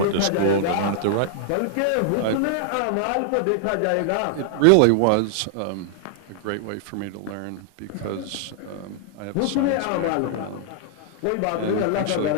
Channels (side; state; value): both; different; correlation 0.00